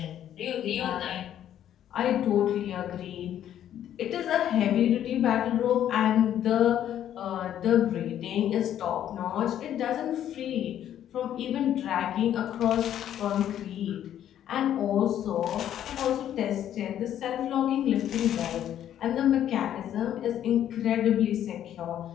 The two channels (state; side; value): quieter; right; 10.8 dB